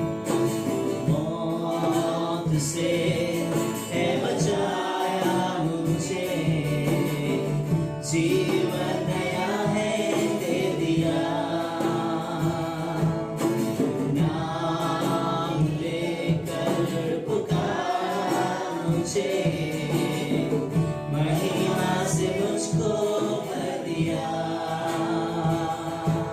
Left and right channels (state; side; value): identical; both; correlation 1.00